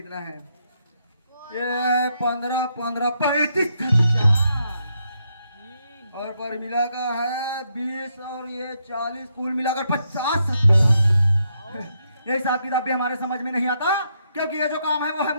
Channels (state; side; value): inverted; both; correlation -0.78